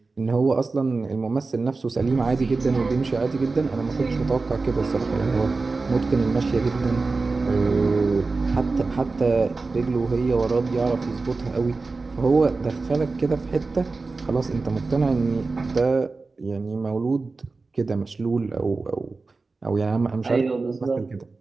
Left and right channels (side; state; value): left; quieter; 3.9 dB